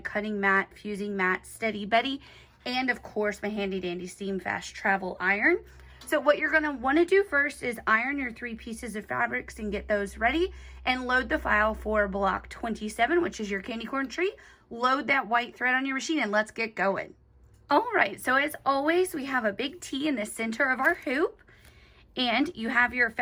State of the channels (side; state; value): both; identical; correlation 1.00